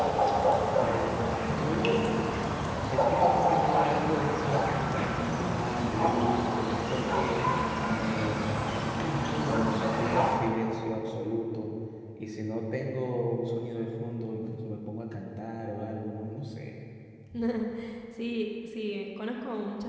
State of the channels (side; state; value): both; identical; correlation 1.00